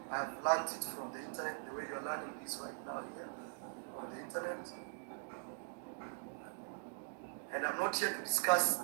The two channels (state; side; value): silent; left; digital silence